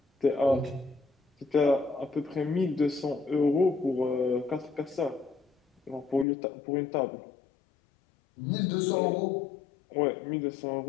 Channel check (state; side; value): drops out; right; at 6.2 s